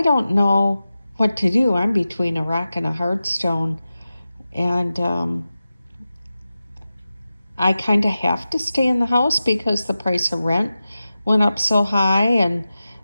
don't know what to do. I'm between a rock and a hard stone, and I kind of have to stay in the house because the price of rent went up so high, and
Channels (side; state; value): both; inverted; correlation -0.93